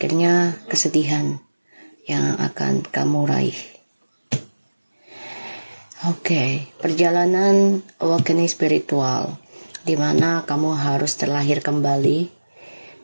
kesedihan yang akan kamu raih. Oke, perjalanan awakening spiritual di mana kamu harus terlahir kembali,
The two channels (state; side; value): inverted; both; correlation -1.00